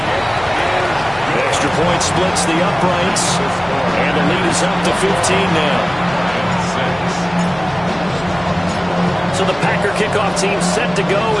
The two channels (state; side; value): noise; left; hum, 18 dB below the sound